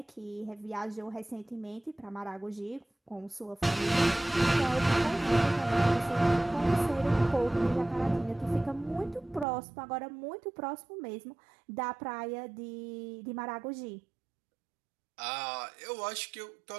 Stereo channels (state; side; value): drops out; left; at 9.5 s